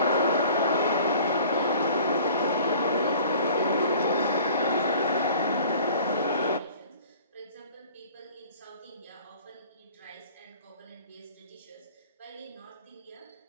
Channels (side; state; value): both; inverted; correlation -0.47